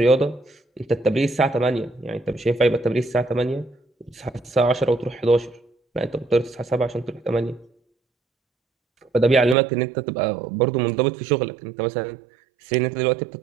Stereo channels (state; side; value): drops out; left; at 9.6 s